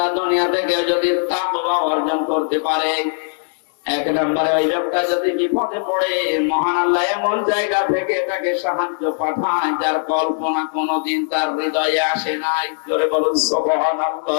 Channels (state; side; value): silent; right; 66 dB below the other